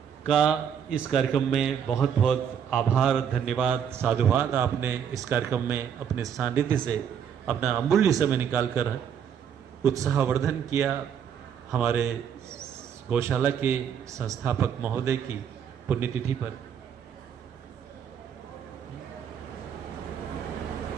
का इस कार्यक्रम में बहुत बहुत आभार, धन्यवाद, साधुवाद। आपने इस कार्यक्रम में अपने सानिध्य से अपना अमूल्य समय निकालकर उत्साहवर्धन किया। हमारे गौशाला के संस्थापक महोदय की पुण्यतिथि पर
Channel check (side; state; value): left; quieter; 8.2 dB